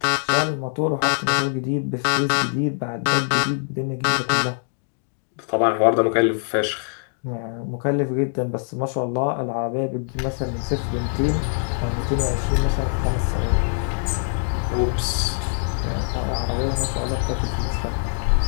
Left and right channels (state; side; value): silent; right; digital silence